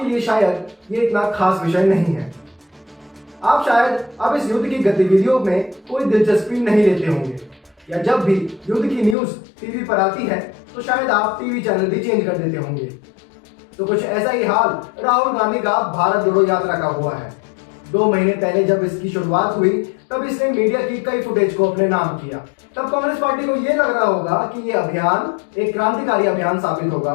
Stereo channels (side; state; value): right; drops out; at 9.2 s